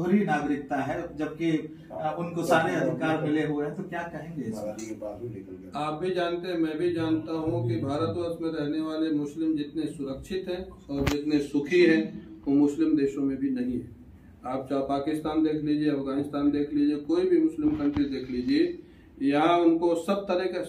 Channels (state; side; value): identical; both; correlation 1.00